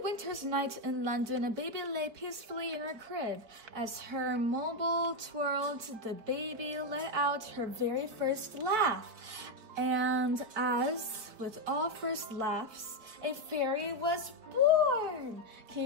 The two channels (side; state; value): left; late; 4.5 ms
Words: winter's night in London, a baby lay peacefully in her crib. As her mobile twirled, the baby let out her very first laugh. And as with all first laughs, a fairy was born. Can